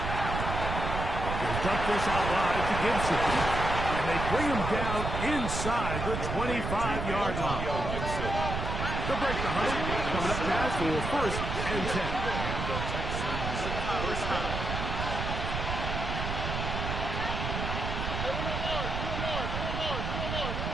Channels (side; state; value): right; noise; rumble, 3 dB below the sound